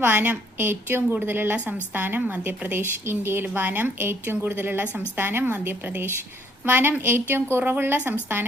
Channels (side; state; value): both; normal; correlation 0.65